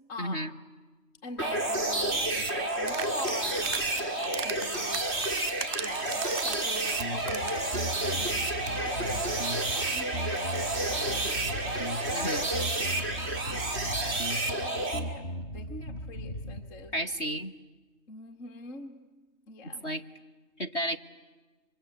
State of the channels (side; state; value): right; late; 3.1 ms